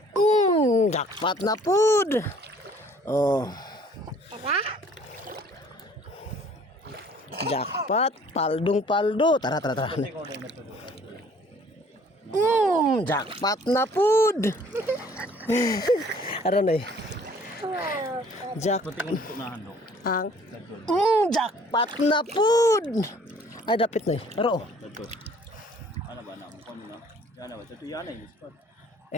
Jackpot na pod. Oh. Tara. Jackpot. Paldo. Tara. Jackpot na pod. Ano na eh? Jackpot na pod. Ay, dapit na eh. Pero, Ano ba na? Mukha mo na. Yana ba? Ito yana yung spot.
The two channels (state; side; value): normal; both; correlation 0.56